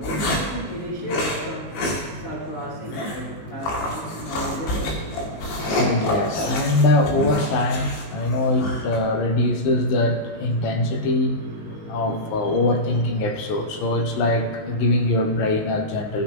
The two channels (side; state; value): right; late; 19 ms